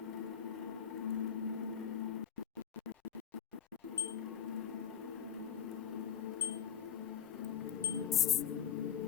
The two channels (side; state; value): right; quieter; 8.4 dB